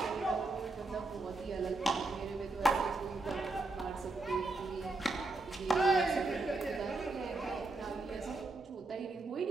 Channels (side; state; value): left; quieter; 3.2 dB